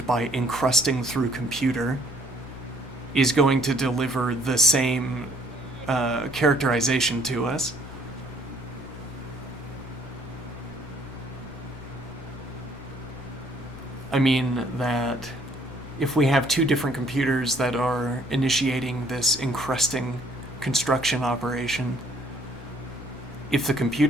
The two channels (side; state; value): both; normal; correlation 0.62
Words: by encrusting through computer is going to deliver the same characterization to us. I mean that if we have two different computers that are initiating this encrusting construction operation, if the